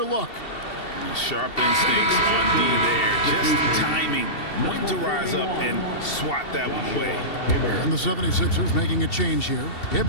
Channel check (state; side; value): late; right; 2.7 ms